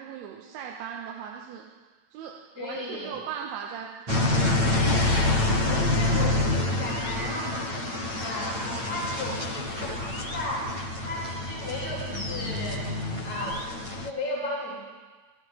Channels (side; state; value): left; late; 9.0 ms